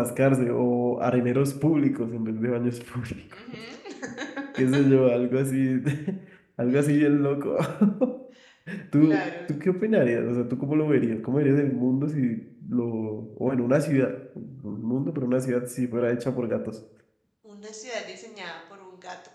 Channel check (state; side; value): identical; both; correlation 1.00